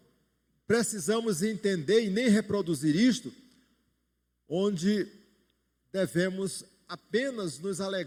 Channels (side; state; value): both; identical; correlation 1.00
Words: precisamos entender e nem reproduzir isto, onde devemos apenas nos